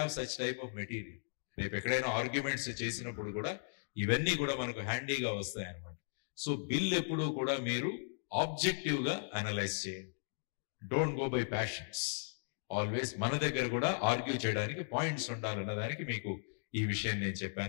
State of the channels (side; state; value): right; silent; digital silence